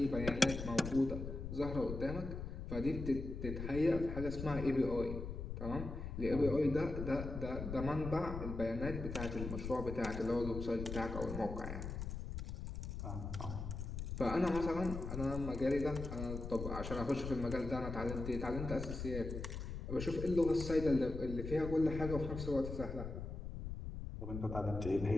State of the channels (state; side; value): noise; left; rumble, 6 dB below the sound